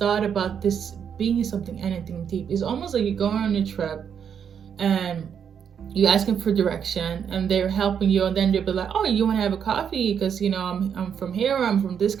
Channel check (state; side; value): quieter; left; 7.8 dB